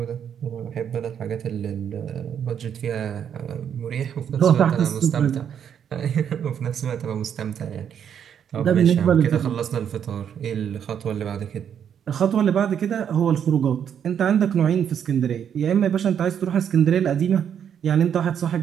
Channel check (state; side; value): quieter; left; 8.5 dB